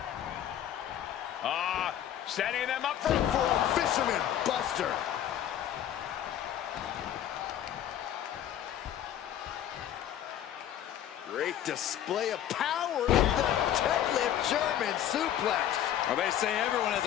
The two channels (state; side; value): quieter; right; 11.0 dB